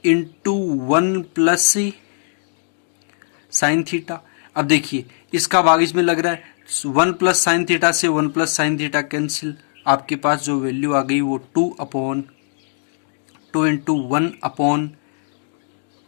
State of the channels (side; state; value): right; silent; digital silence